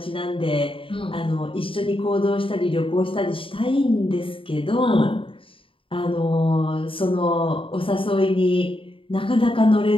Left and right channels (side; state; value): right; late; 0.26 ms